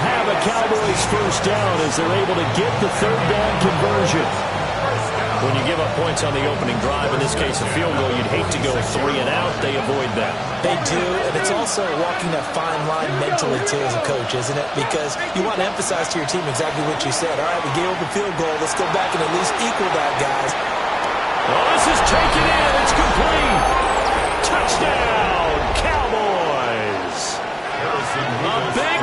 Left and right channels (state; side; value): identical; both; correlation 1.00